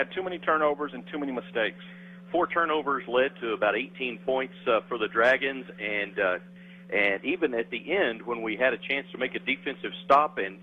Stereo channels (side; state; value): both; identical; correlation 1.00